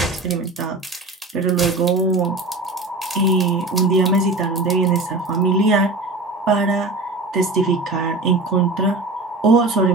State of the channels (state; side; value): quieter; left; 3.1 dB